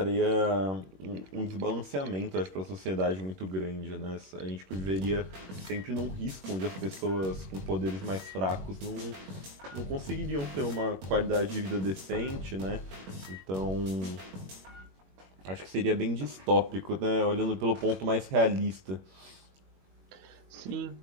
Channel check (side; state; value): left; late; 21 ms